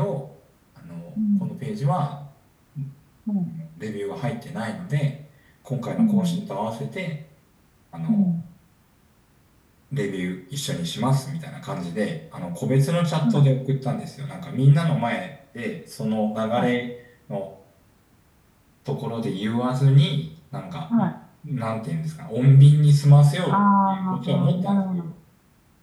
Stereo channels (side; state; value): both; identical; correlation 1.00